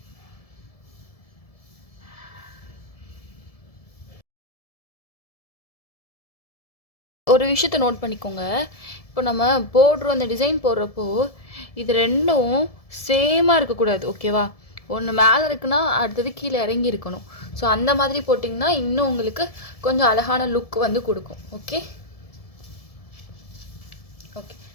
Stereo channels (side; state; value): right; late; 1.7 ms